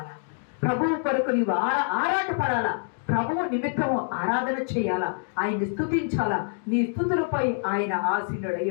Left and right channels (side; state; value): right; silent; digital silence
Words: ప్రభువు కొరకు నీవు ఆరాటపడాలా, ప్రభువు నిమిత్తం ఆరాధన చేయాలా, ఆయన్ని స్తుతించాలా, నీ స్తుతులపై ఆయన ఆసీనుడై